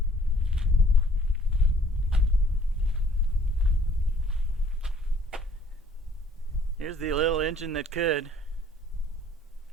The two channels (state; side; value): normal; both; correlation 0.59